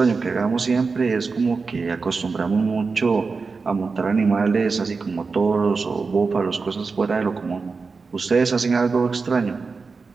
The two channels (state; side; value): quieter; left; 4.5 dB